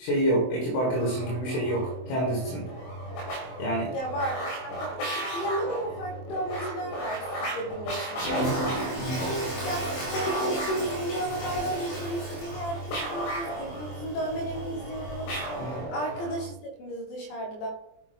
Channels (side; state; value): right; late; 23 ms